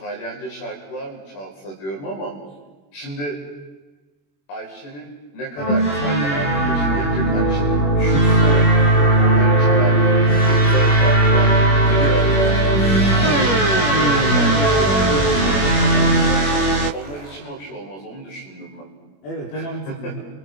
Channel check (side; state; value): right; late; 21 ms